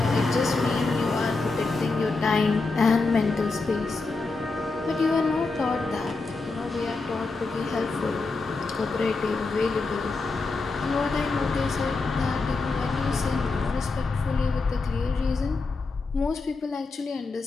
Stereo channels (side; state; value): right; quieter; 3.8 dB